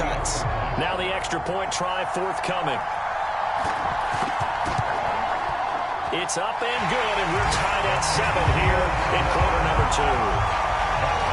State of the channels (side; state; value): both; identical; correlation 1.00